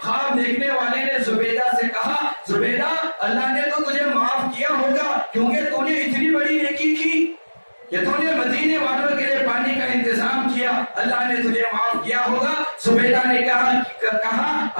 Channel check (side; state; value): both; inverted; correlation -1.00